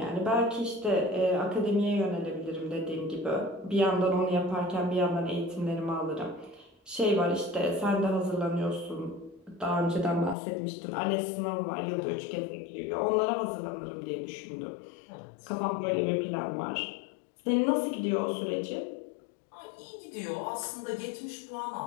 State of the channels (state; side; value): drops out; right; at 10.4 s